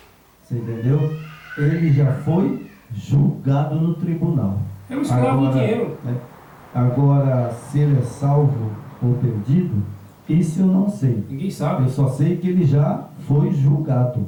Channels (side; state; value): both; identical; correlation 1.00